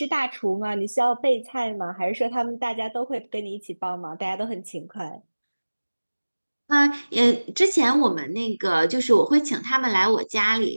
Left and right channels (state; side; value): inverted; both; correlation -1.00